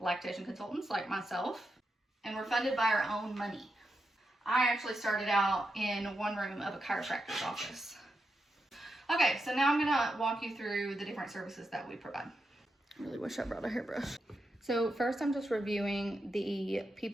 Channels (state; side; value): normal; both; correlation 0.86